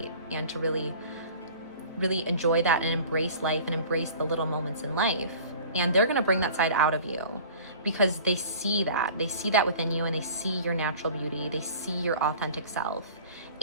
and to really, really enjoy that and embrace life and embrace the little moments in life. And they're going to bring that side out of you because they see that within you, and they see your natural beauty. They see your authentic self,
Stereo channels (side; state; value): both; inverted; correlation -0.44